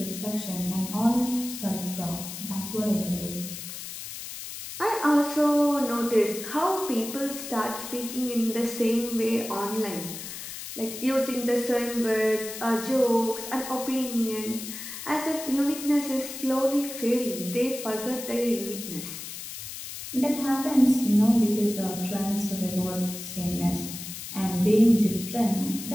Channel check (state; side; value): noise; left; hiss, 9 dB below the sound